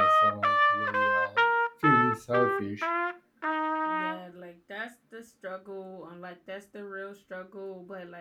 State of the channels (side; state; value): both; identical; correlation 1.00